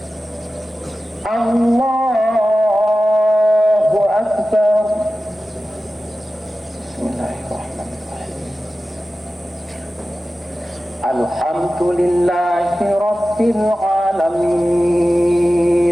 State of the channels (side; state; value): both; normal; correlation 0.95